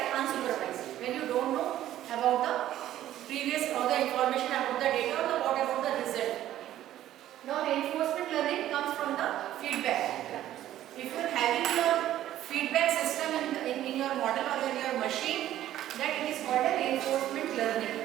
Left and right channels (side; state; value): left; quieter; 12.9 dB